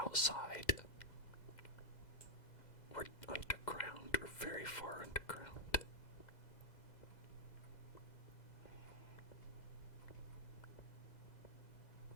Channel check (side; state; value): right; late; 2.1 ms